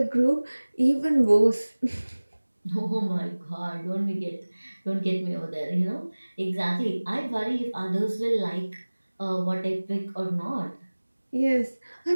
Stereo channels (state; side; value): inverted; both; correlation -1.00